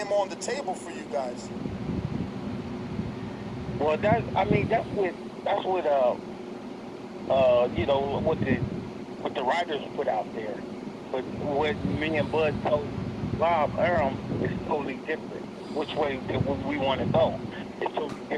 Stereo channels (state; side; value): identical; both; correlation 1.00